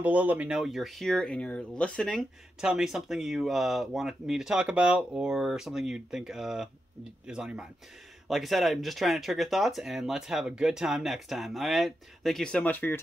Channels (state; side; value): normal; both; correlation 0.87